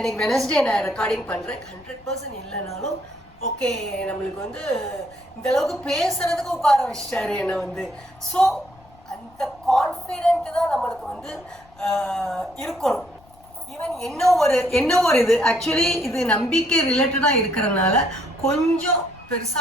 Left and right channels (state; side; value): noise; left; rumble, 27 dB below the sound